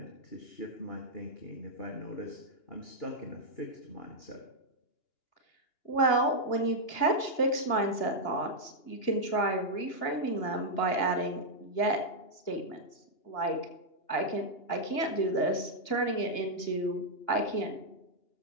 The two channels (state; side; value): late; right; 2.9 ms